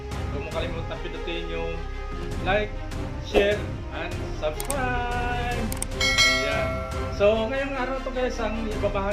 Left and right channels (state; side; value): identical; both; correlation 1.00